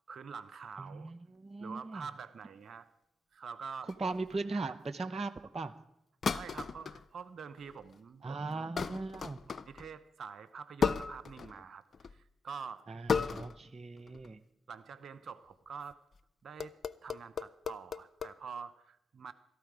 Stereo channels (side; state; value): both; normal; correlation 0.82